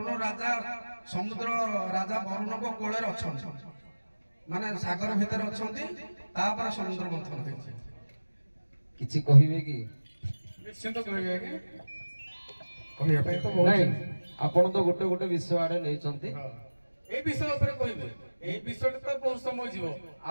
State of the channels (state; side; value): inverted; both; correlation -1.00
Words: राजा समुद्र राजा वरुण को कोले अच्छा माने सागर भीतर अछंती तापर समुद्र मंथन होइছে किछि कहिबे की निश्चित कहिबे की कहिया पे तो बहुत नहीं आपण तो गोटे गोटे विषय आडे नै चंती ए विषय ऊपर कहिबे ए विषय तो बहुत समय जीवो